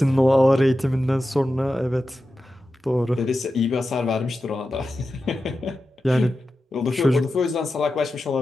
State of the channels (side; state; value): both; normal; correlation 0.92